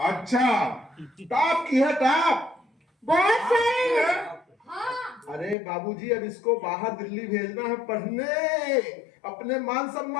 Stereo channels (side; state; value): right; drops out; at 5.6 s